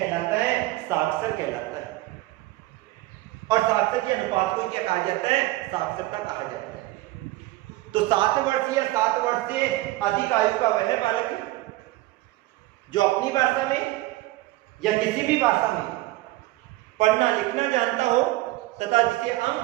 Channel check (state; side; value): quieter; left; 18.4 dB